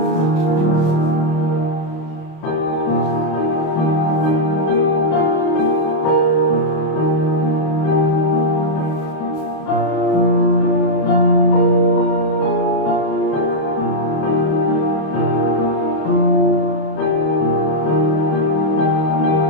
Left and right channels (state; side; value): late; right; 31 ms